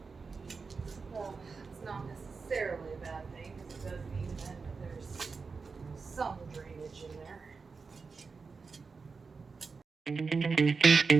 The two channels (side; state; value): left; quieter; 4.7 dB